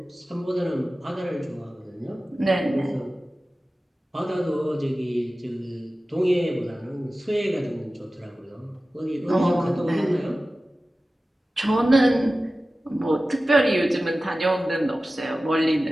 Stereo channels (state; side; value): normal; both; correlation 0.96